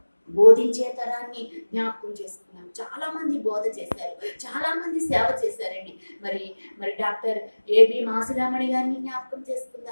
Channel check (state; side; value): inverted; both; correlation -1.00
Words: బోధించే తరాన్ని జ్ఞాపకం చేసుకున్నాం. చాలా మంది బోధ చేశారు, చాలా మంది సేవ చేశారండి. మరి డాక్టర్ ఏబి మాసురామణి గారిని జ్ఞాపకం